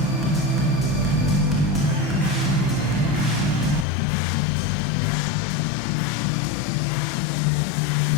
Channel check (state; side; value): drops out; right; at 3.9 s